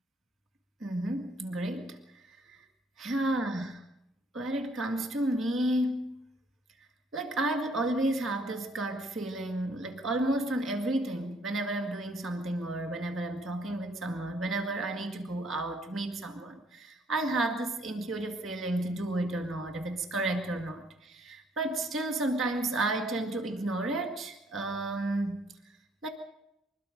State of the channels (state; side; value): normal; both; correlation 0.65